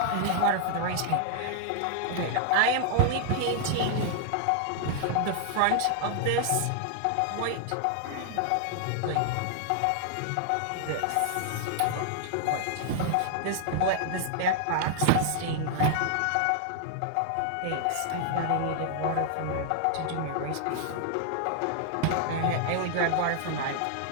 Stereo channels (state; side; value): different; both; correlation 0.00